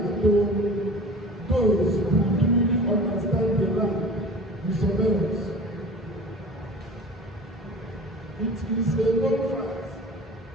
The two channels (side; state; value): both; normal; correlation 0.40